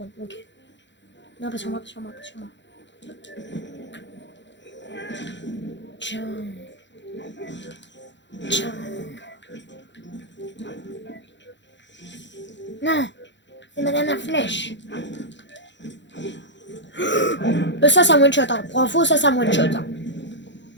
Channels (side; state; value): right; late; 0.53 ms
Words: Ok. Non, pas sur moi. Tiens. Non. C'est ma dernière flèche. Ça, c'est un one shot. Hein. Pour info, ça, c'est un one shot. Hein.